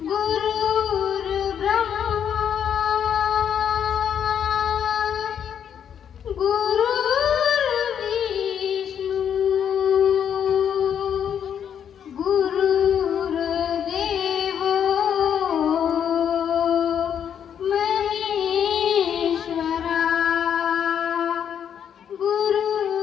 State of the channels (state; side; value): quieter; right; 8.6 dB